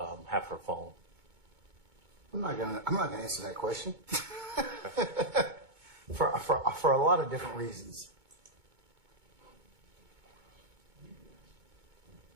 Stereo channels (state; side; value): late; left; 2.2 ms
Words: her phone? I'm not gonna answer that question for a lot of different reasons.